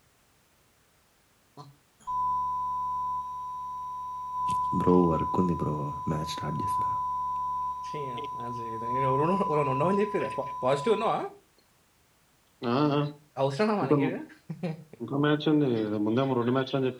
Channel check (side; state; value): both; identical; correlation 1.00